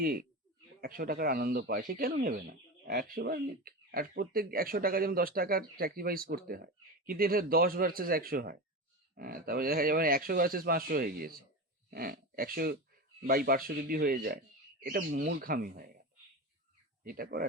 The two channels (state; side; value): normal; both; correlation 0.23